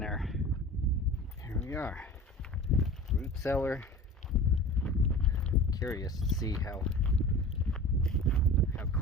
Here we are, root cellar. Curious to see how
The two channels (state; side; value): normal; both; correlation 0.38